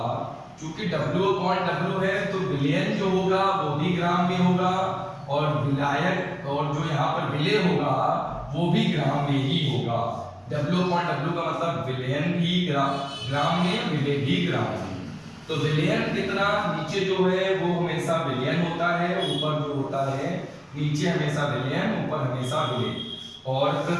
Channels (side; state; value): both; identical; correlation 1.00